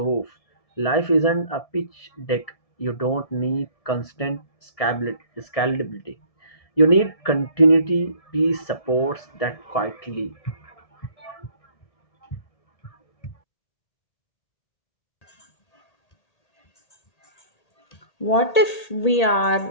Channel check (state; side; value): late; right; 1.8 ms